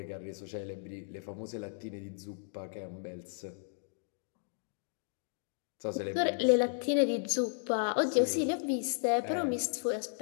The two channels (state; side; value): silent; right; digital silence